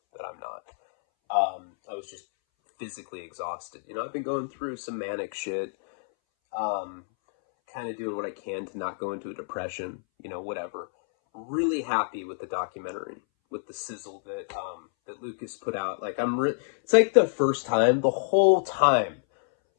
that I'm not. I was just physically exhausted. I've been going through some manic shit, kind of doing what I can to not go into a depression, whatever. Really happy with the documentary, with the sizzle that Lucas put out. Like, it's like the first time, the whole time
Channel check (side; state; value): right; silent; 59 dB below the other